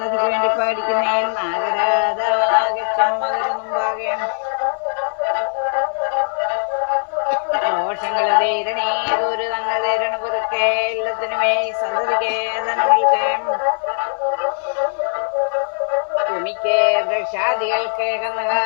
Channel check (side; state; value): right; silent; digital silence